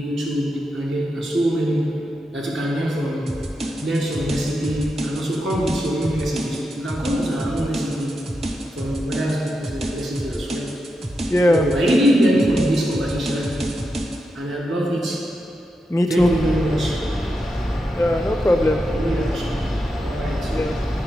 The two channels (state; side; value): normal; both; correlation 0.87